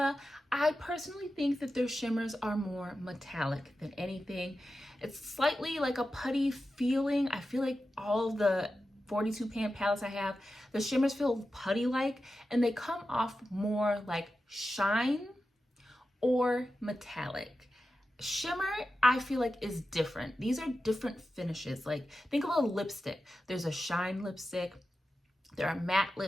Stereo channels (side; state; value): both; normal; correlation 0.92